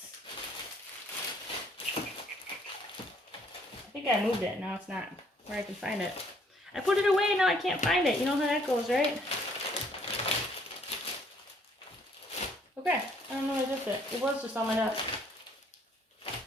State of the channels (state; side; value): normal; both; correlation 0.64